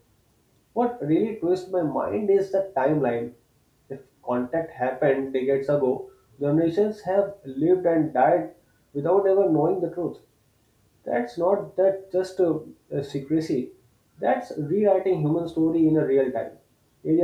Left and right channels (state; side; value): identical; both; correlation 1.00